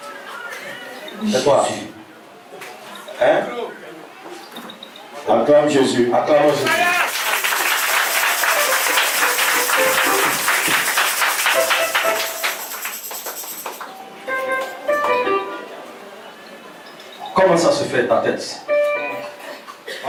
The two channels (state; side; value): identical; both; correlation 1.00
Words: C'est toi. Hein? Acclame Jésus. Acclame Jésus. Comment ça se fait ta tête?